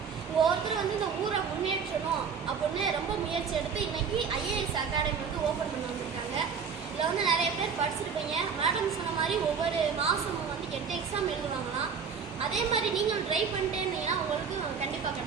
ஒவ்வொருத்தரும் இந்த ஊரை முன்னேற்றணும் அப்படின்னு ரொம்ப முயற்சி எடுத்து இன்னைக்கு ஐஏஎஸ் அகாடமி ஓப்பன் பண்ணி வந்திருக்காங்க. இதில் நிறைய பேர் படிச்சிருப்பீங்க. மேடம் சொன்ன மாதிரி ஒவ்வொரு மாதமும் 8 எக்ஸாம் எழுதுவாங்களாம். அதே மாதிரி நீங்கள் ட்ரை பண்ணிட்டே இருந்தீங்கன்னா உங்களுக்கு கண்டிப்பாக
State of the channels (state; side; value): quieter; left; 6.2 dB